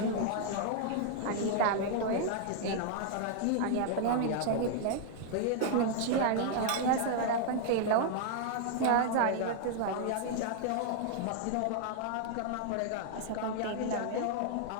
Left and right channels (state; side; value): different; both; correlation 0.00